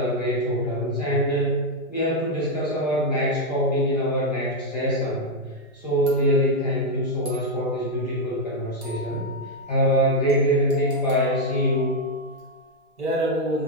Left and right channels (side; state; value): both; normal; correlation 0.02